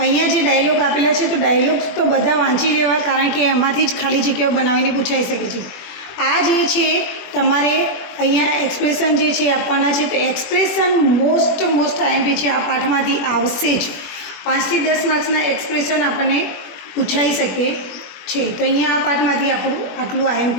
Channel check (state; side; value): late; right; 21 ms